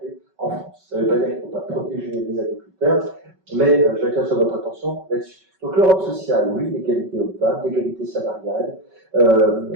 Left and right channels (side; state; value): left; late; 5.3 ms